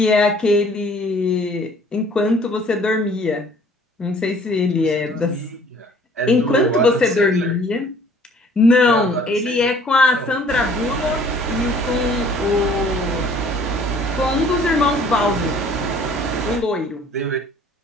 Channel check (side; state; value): both; normal; correlation 0.55